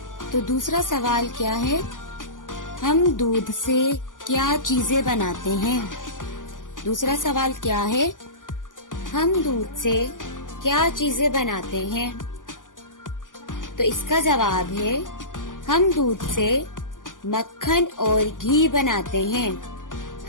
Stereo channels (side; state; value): right; late; 0.88 ms